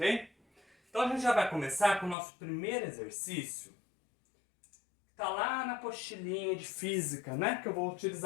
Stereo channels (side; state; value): right; drops out; at 2.1 s